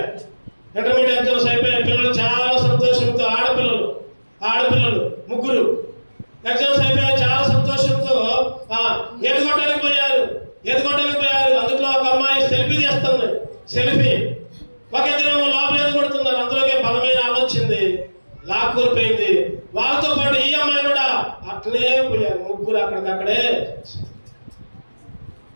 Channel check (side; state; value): both; inverted; correlation -1.00